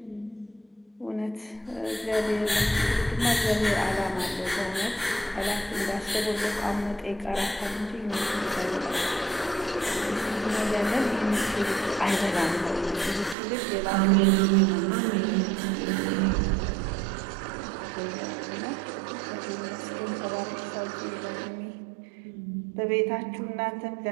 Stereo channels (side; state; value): left; drops out; at 13.4 s